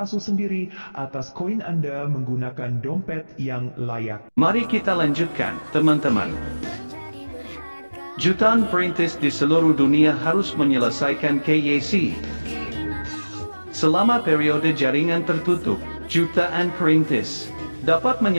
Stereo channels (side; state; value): both; inverted; correlation -1.00